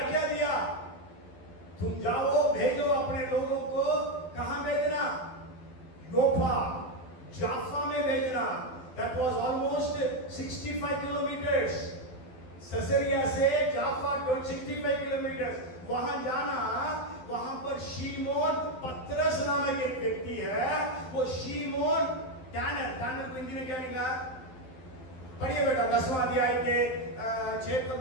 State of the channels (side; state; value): right; late; 12 ms